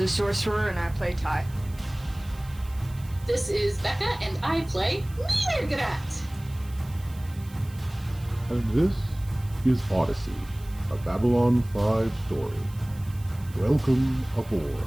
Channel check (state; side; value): noise; right; hiss, 23 dB below the sound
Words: Sorcerer, and I play Ty. This is Becca, and I play Mirgrat. And this is Odyssey, a Babylon 5 story. Welcome